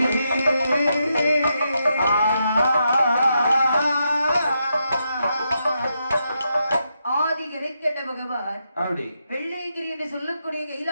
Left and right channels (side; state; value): both; inverted; correlation -0.83